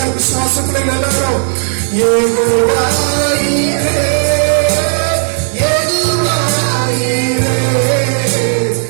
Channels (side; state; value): left; silent; digital silence